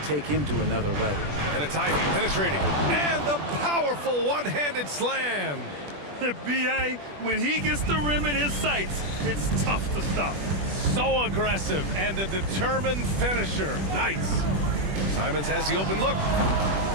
take him to another level. And it's Ivy penetrating, and the powerful one-handed slam. B.A., when he gets the rim in his sights, it's tough to stop. So aggressive and a determined finisher. Nice. Simons has the open look.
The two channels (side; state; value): left; late; 21 ms